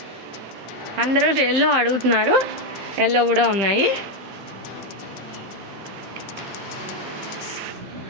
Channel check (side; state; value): left; late; 15 ms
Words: అందరూ ఎల్లో అడుగుతున్నారు. ఎల్లో కూడా ఉన్నాయి.